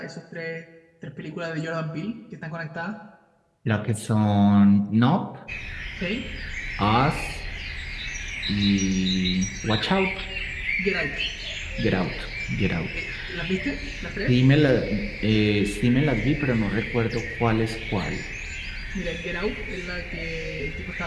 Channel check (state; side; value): identical; both; correlation 1.00